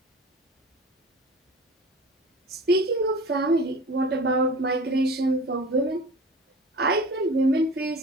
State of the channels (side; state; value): both; normal; correlation 0.39